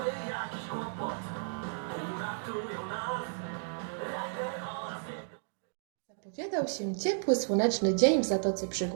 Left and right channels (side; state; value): left; silent; digital silence